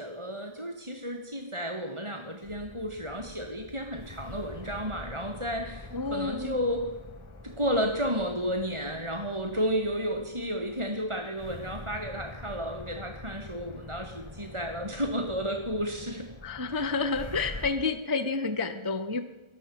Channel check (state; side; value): late; left; 1.4 ms